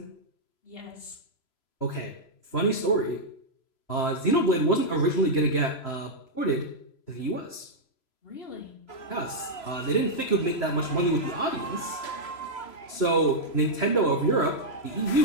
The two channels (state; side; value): late; right; 3.0 ms